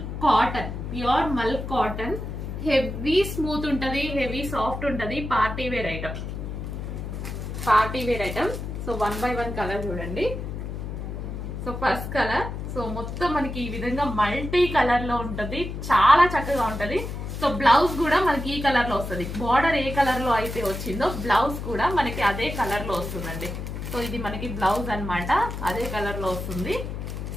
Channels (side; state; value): left; noise; hum, 6 dB below the sound